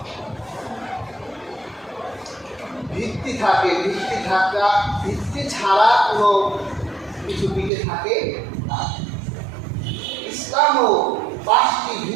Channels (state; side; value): drops out; left; at 7.7 s